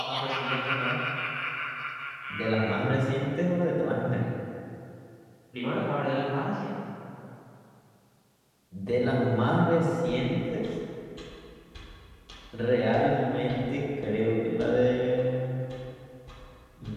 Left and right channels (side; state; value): both; identical; correlation 1.00